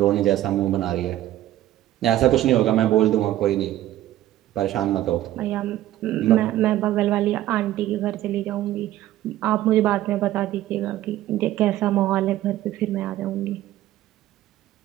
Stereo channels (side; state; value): left; quieter; 13.9 dB